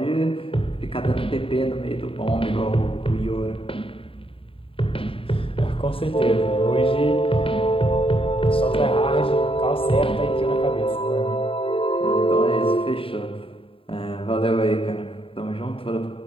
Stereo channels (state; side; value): late; right; 0.27 ms